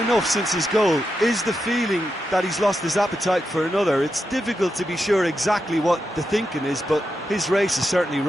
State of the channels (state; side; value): normal; both; correlation 0.87